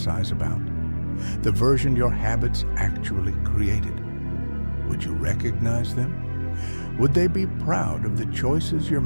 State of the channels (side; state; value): both; inverted; correlation -1.00